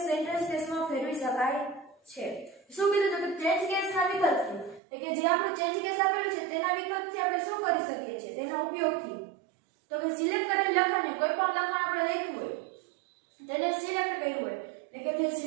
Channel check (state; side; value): drops out; left; at 4.8 s